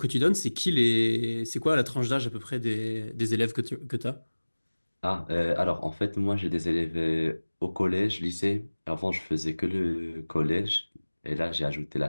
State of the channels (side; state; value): both; inverted; correlation -1.00